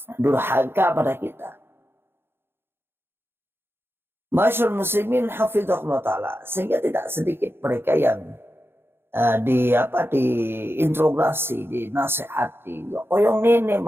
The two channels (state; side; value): late; left; 0.11 ms